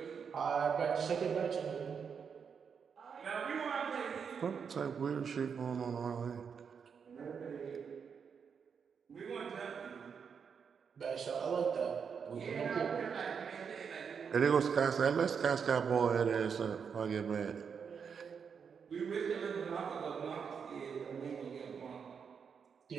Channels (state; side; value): quieter; left; 6.5 dB